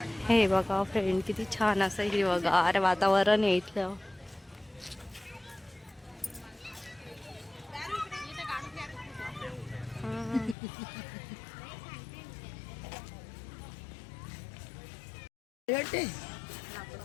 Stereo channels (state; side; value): drops out; right; at 10.6 s